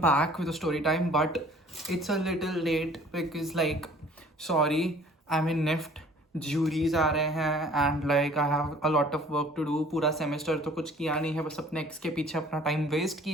with a story time, but it's a little late because, sorry, I'm in NIFT. Juries आ रहे हैं and I have a lot of work to do. पूरा semester तो कुछ किया नहीं है, बस अपने ex के पीछे अपना time waste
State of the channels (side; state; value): both; normal; correlation 0.52